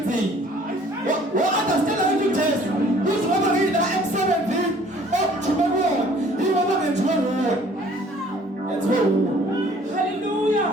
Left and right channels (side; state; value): both; normal; correlation 0.55